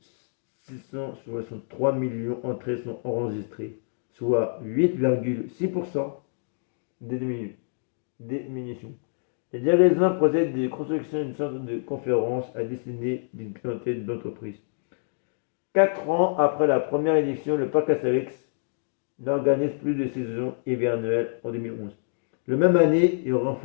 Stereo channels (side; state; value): right; silent; digital silence